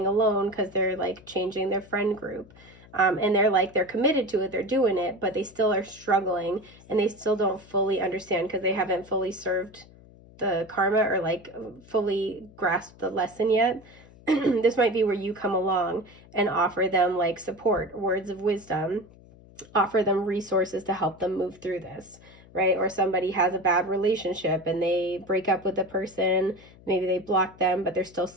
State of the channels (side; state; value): left; noise; hum, 23 dB below the sound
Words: alone because they're like changing their friend group. And they're committed to it, they're doing it, but they still are struggling and they still don't fully understand because they haven't fully served the karma or like fully grasped the lesson yet. This might be where you come along and offer them like support, words of wisdom, offer them resources to help them move through this, right? Or somebody has a bad relationship and they break up with the person, maybe they block them, but they're still